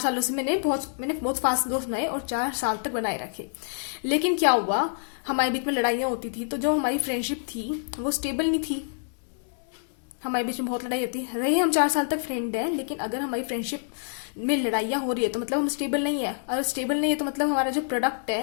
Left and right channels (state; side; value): silent; right; digital silence